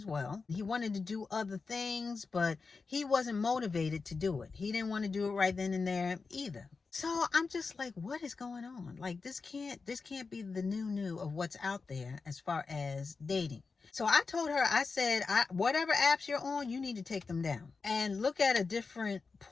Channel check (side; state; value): right; quieter; 4.5 dB